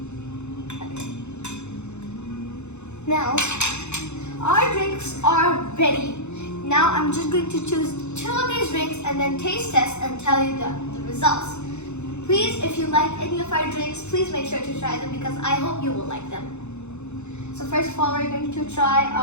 Okay. Now, our drinks are ready. Now I'm just going to choose 2 of these drinks and then taste test and tell you the results. Please, if you like any of our drinks, please make sure to try them because I hope you will like them. So first of all, we're going to try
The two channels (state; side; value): late; right; 0.82 ms